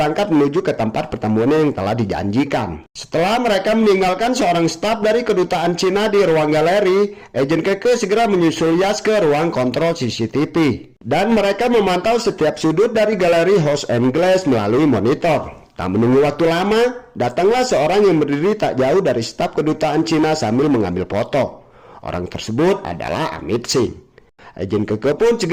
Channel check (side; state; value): both; identical; correlation 1.00